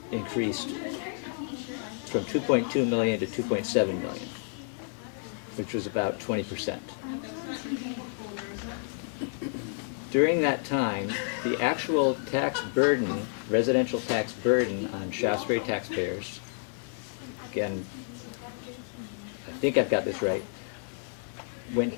increased from 2.2 million to 2.7 million, which was about 20%. During that time, the actual tax burden, residential tax burden on Shaftsbury taxpayers, again, I think I've got this right, went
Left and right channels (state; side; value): silent; right; 58 dB below the other